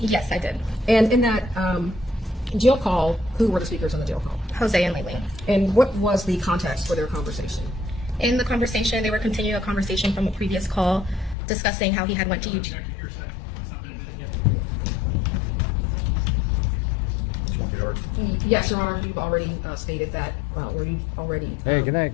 Yes, I did. And in that jail call, who were the speakers on the jail call? Jose and Laken. And what was the context for their conversation? In the conversation, they were continuing a conversation from a previous call, discussing how he had went to UG. Yes, Your Honor, you've already stated that, or you've already Hey, good night,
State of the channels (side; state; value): right; drops out; at 11.4 s